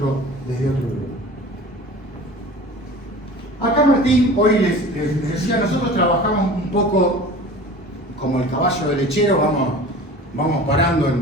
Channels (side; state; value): both; normal; correlation 0.40